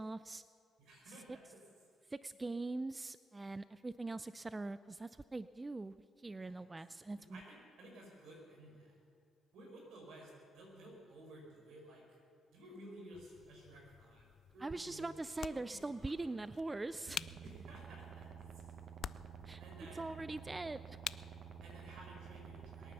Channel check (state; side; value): normal; both; correlation 0.89